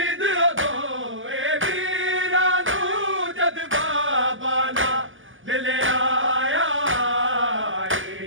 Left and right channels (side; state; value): left; late; 0.58 ms